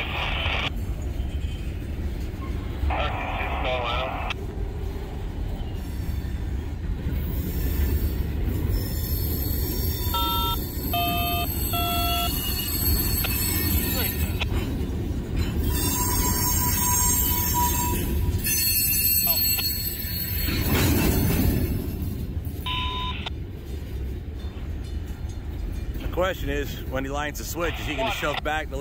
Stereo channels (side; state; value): both; identical; correlation 1.00